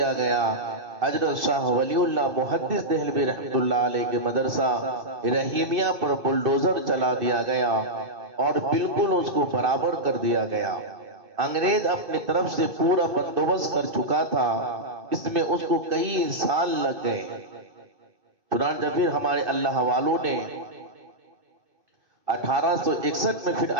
گیا۔ حضرت شاہ ولی اللہ محدث دہلوی رحمت اللہ علیہ کے مدرسہ رحیمیہ پر بلڈوزر چلا دیا گیا اور بالکل اس کو برابر کر دیا گیا۔ انگریز اپنی طرف سے پورا بندوبست کر چکا تھا، اس میں اس کو کئی سال لگ گئے۔ چنانچہ پھر ہمارے اللہ والوں نے 1861 میں پھر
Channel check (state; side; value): late; left; 2.6 ms